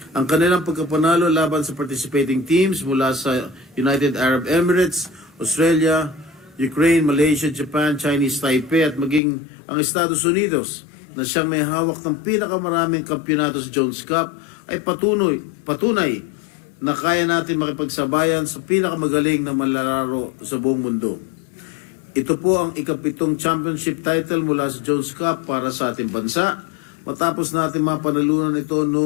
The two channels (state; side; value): drops out; right; at 9.2 s